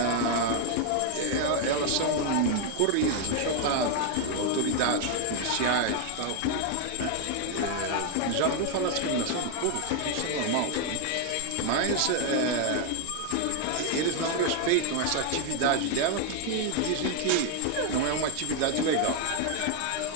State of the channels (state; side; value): different; both; correlation 0.00